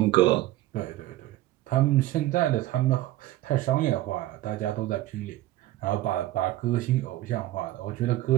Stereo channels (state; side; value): quieter; left; 15.7 dB